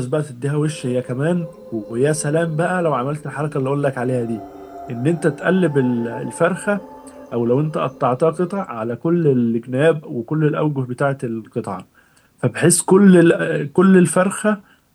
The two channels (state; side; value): identical; both; correlation 1.00